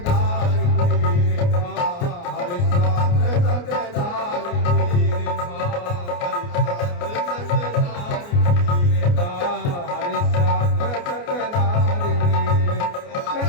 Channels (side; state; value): right; late; 29 ms